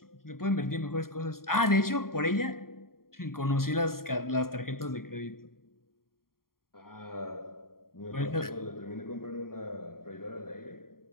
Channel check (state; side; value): late; right; 0.92 ms